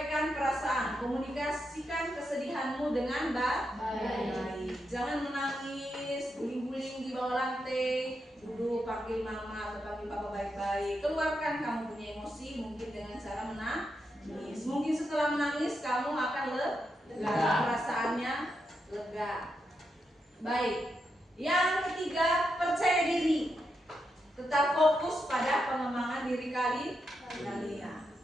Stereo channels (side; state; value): both; normal; correlation 0.84